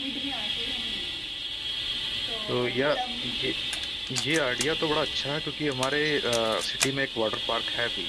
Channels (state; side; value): identical; both; correlation 1.00